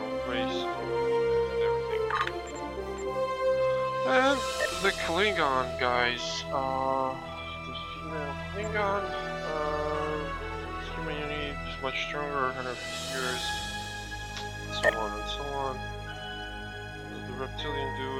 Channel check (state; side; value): identical; both; correlation 1.00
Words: own race and everything. And the Klingon guys. The female Klingon. Human unit is much stronger, 150 years. So on and so on. The reptilian